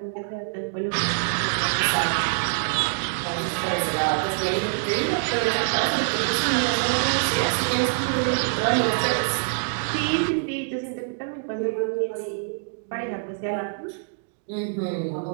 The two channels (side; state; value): left; silent; digital silence